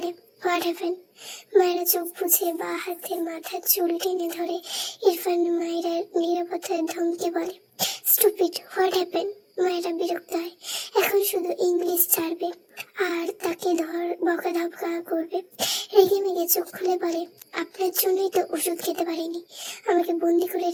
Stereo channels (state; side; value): identical; both; correlation 1.00